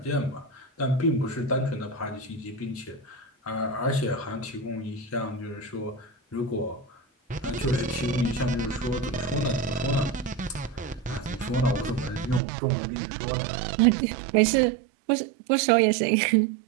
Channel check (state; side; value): drops out; left; at 12.4 s